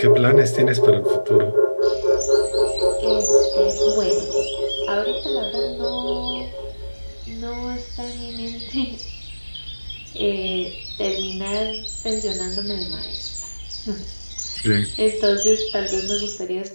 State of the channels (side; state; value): both; inverted; correlation -1.00